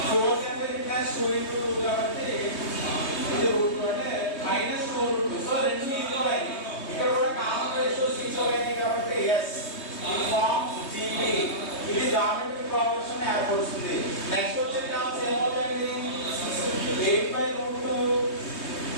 4 అంటే plus 2 into 2 కాబట్టి ఇది రూట్ అంటే -4/2 సో రెండు ఈక్వల్ అయ్యాయి ఇక్కడ కూడా కామన్ రేషియోస్ ఈక్వల్ అయ్యాయి కాబట్టి yes it forms GP ఇది జామెట్రిక్ ప్రోగ్రెషన్ ఏర్పడుతుంది నెక్స్ట్ వచ్చే టర్మ్స్ ఏమవుతాయండి 8/2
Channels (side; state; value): right; late; 3.2 ms